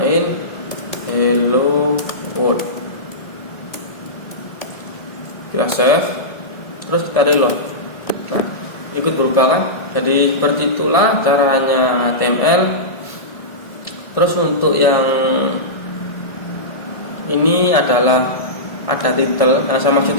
hello world. Kita save, terus kita reload. Nah, ikut berubah kan? Jadi seperti itulah caranya HTML. Terus untuk yang ini adalah ada title. Nah, sama maksud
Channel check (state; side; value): late; right; 1.8 ms